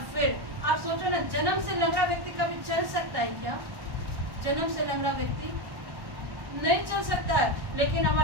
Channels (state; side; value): late; left; 1.1 ms